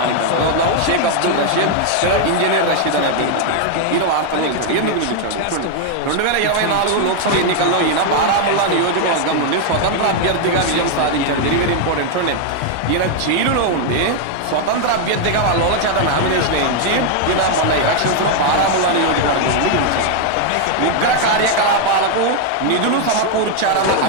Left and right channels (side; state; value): both; different; correlation 0.00